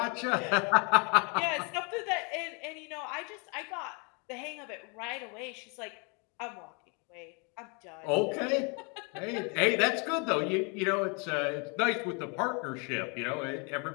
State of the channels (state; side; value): quieter; right; 33.5 dB